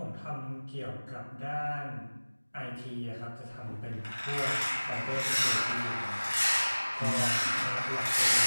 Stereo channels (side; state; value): both; inverted; correlation -1.00